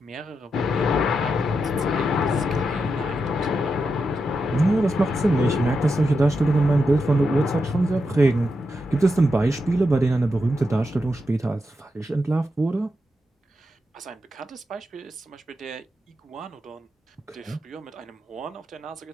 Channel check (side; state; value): both; normal; correlation 0.86